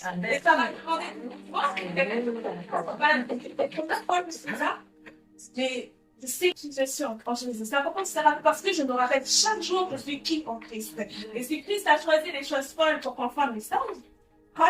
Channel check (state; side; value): identical; both; correlation 1.00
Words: Et ça va demander mais je sais qui je suis en Jésus. C'est important de se rappeler parce que je me rappelle chaque jour que je suis qui en Christ. Et si Christ a choisi les choses folles pour qu'on fasse le message,